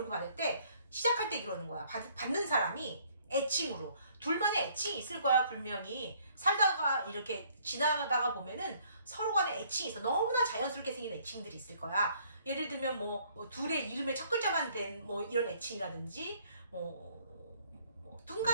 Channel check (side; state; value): both; inverted; correlation -0.62